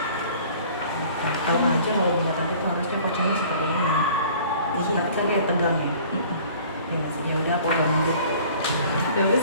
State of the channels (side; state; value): both; inverted; correlation -0.50